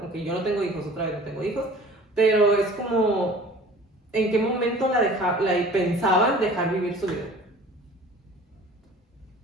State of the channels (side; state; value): both; normal; correlation 0.46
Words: Aunque yo no tengo hijos, otra vez no tengo hijos, pero es como, ¿en qué momento la pensaban dejar vivir su vida?